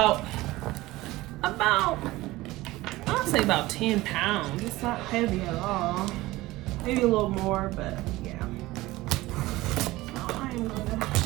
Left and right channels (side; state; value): left; quieter; 18.7 dB